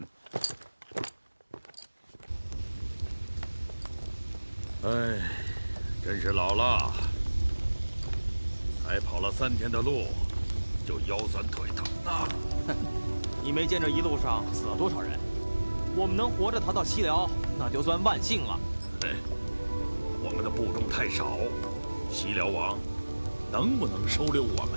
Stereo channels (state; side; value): inverted; both; correlation -1.00